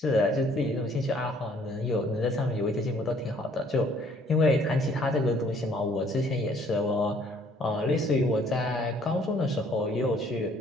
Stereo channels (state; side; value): normal; both; correlation 0.61